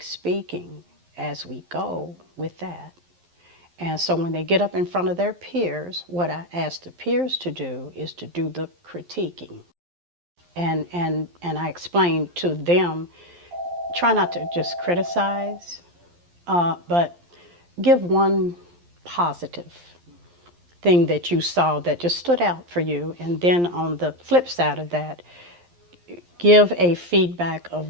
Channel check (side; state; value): left; late; 11 ms